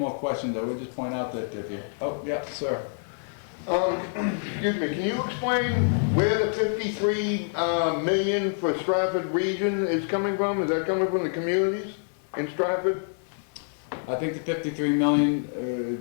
questions. I would just point out that if you, oh, yeah, sir. Excuse me, can you explain where the 53 million for Stratford region is coming from? Is that coming from the communities in Stratford? I think the 53 million,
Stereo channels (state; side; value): silent; right; digital silence